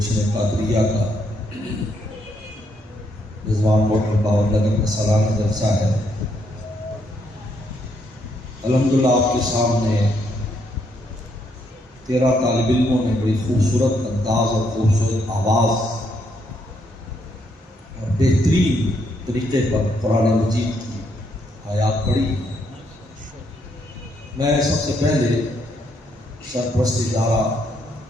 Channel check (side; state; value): both; normal; correlation 0.74